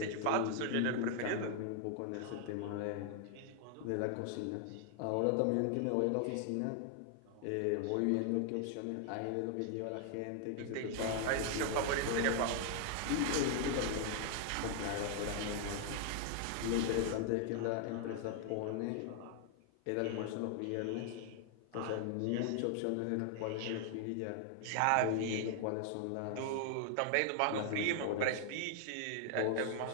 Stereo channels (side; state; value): both; different; correlation 0.00